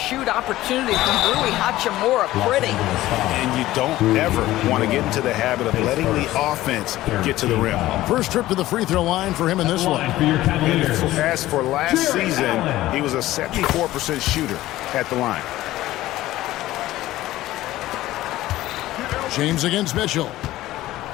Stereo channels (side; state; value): right; quieter; 15.8 dB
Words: opportunity from Rui Hachimura. Pretty. And you don't ever want to get into the habit of letting the offense get to the rim. First trip to the free throw line for him in this one. As for last season, he was a 74% shooter at the line. James against Mitchell.